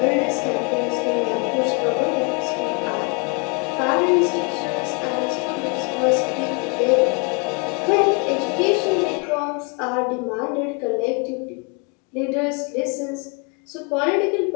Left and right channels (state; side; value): quieter; right; 33.6 dB